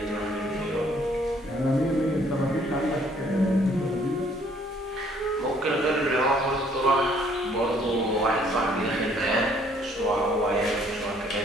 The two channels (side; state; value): both; normal; correlation 0.62